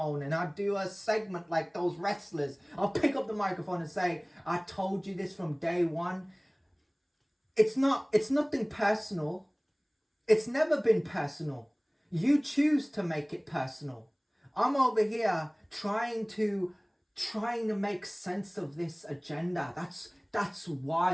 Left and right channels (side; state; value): both; identical; correlation 1.00